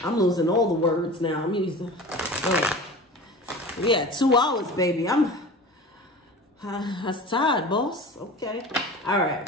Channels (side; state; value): both; normal; correlation 0.36